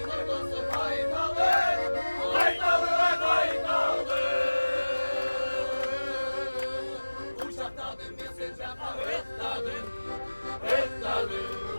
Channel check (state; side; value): inverted; both; correlation -1.00